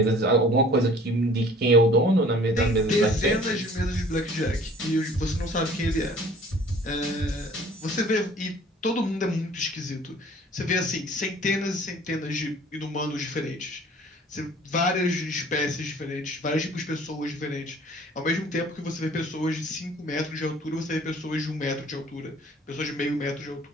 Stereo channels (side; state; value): both; normal; correlation 0.51